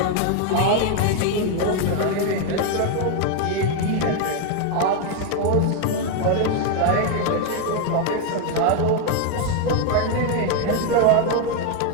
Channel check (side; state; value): both; different; correlation 0.01